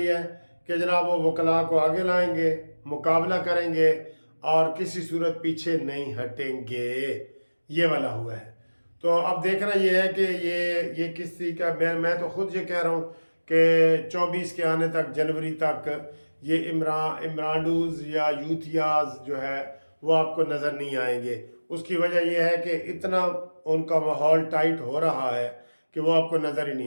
है कि जनाब वो वकला को आगे लाएंगे, मुकाबला करेंगे और किसी सूरत पीछे नहीं हटेंगे। ये वाला हुआ है। तो अब देखना ये है कि ये किसी का, मैं तो खुद ये कह रहा हूँ कि 24 के आने तक, जनवरी तक ये इमरानडूज या यूथियाज जो है वो आपको नज़र नहीं आएंगे। उसकी वजह यह है कि इतना उनका माहौल टाइट हो रहा है कि वो आपको नज़र ही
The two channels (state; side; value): inverted; both; correlation -1.00